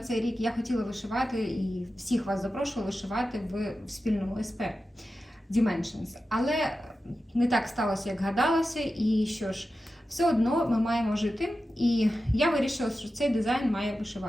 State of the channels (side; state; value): both; normal; correlation 0.92